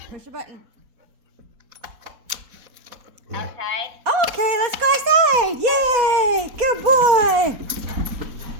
Push a button. Outside? Okay, let's go outside. Yay! Good boy.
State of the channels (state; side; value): late; left; 4.2 ms